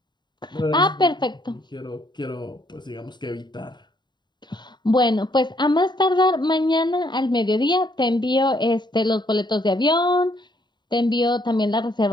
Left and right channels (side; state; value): right; late; 0.21 ms